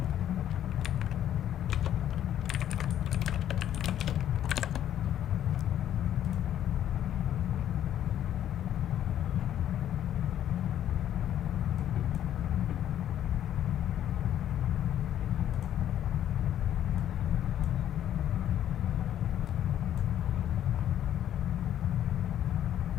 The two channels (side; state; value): right; quieter; 10.9 dB